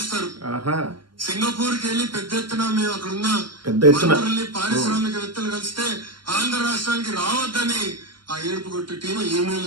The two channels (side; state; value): left; late; 0.72 ms